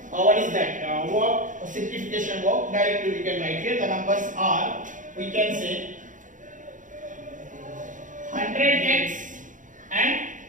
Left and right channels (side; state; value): left; late; 0.37 ms